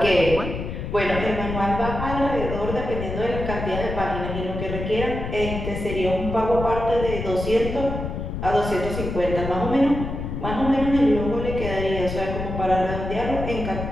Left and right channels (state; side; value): noise; left; rumble, 5 dB below the sound